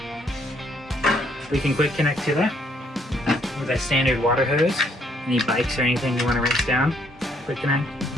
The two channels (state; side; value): normal; both; correlation 0.68